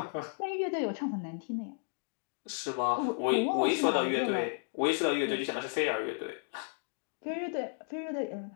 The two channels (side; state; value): right; silent; digital silence